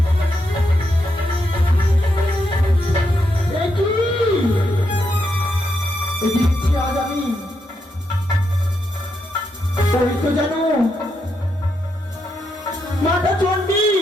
আজ আমি তো জানো মাতা চণ্ডী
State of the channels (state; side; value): normal; both; correlation 0.81